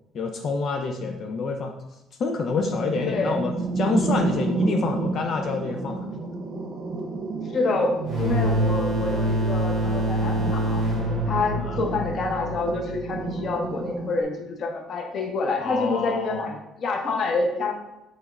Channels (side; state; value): both; normal; correlation 0.54